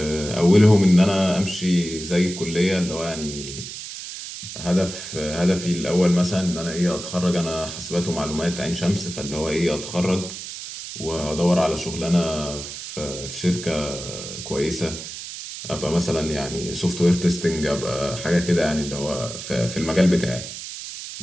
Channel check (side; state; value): right; noise; hiss, 10 dB below the sound